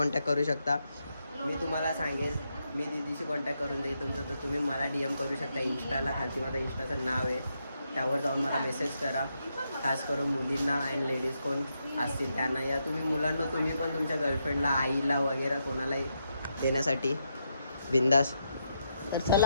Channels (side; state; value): both; inverted; correlation -0.82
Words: करू शकता. मी तुम्हाला सांगेल, मी दीदीशी कॉन्टॅक्ट करून देईल तुमचं. तर तुम्ही मला DM करू शकता इंस्टाला. खालती माझं इंस्टाचं नाव आहे, त्यावर जाऊन मला मेसेज करा. खास करून मुलींना आणि लेडीज कोण असतील त्यांना, या तुम्ही मुलांना तुम्ही पण तुमच्या गर्लफ्रेंडला, आईला वगैरे कोणालाही देण्यासाठी बिंदास. तर